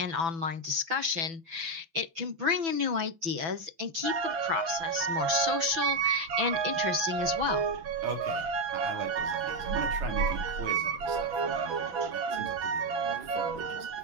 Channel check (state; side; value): late; left; 6.1 ms